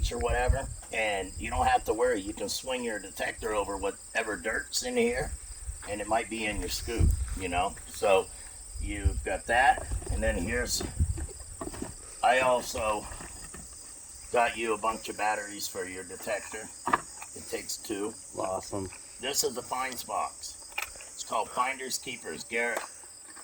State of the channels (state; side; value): identical; both; correlation 1.00